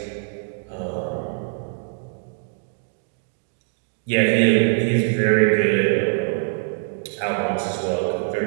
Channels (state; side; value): silent; left; digital silence